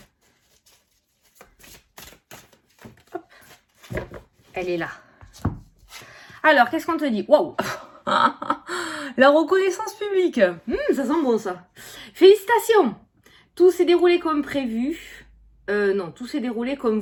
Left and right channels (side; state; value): both; identical; correlation 1.00